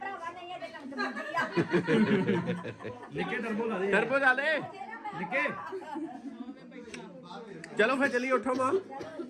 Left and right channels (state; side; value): identical; both; correlation 1.00